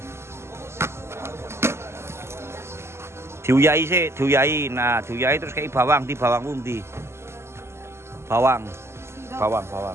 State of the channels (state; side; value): late; left; 0.13 ms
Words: Diuyai sih, diuyai. Nah, diuyai terus kei bawang, di bawang pundi. Bawang.